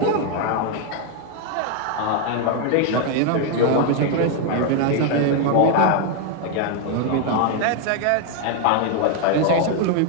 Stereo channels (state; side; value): different; both; correlation 0.01